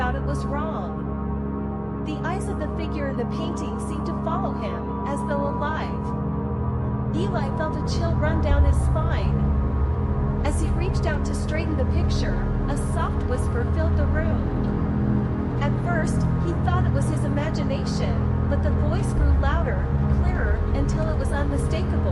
it was wrong. The eyes of the figure in the painting seemed to follow him, as though alive. Eli felt a chill run down his spine. As he reached out to straighten the picture, a soft whisper filled the room. At first, he thought it was his imagination, but the voice grew louder, clearer, until it was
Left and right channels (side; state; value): both; identical; correlation 1.00